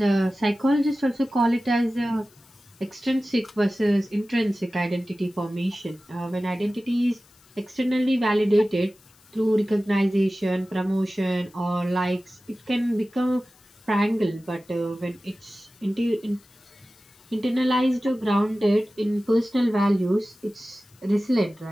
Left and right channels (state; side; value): noise; left; hiss, 30 dB below the sound